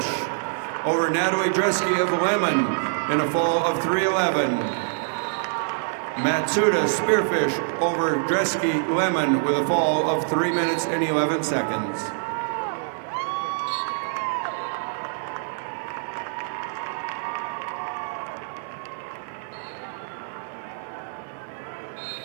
over Natalie Dresky of Lemon in a fall of 3:11. Matsuda Spearfish over Dresky Lemon with a fall of 3 minutes and 11 seconds.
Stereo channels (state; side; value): silent; left; 62 dB below the other